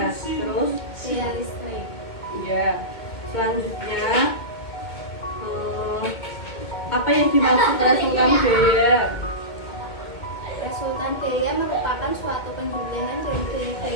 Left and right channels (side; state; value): right; late; 2.2 ms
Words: terus Gaya listrik. ya. Selanjutnya, apa yang dimaksud resultan gaya? Resultan gaya merupakan suatu penjumlahan dari